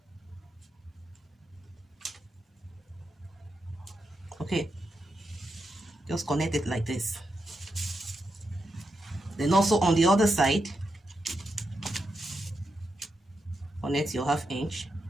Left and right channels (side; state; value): both; normal; correlation 0.85